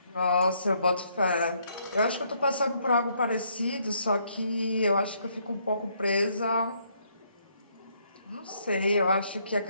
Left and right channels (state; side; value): inverted; both; correlation -0.71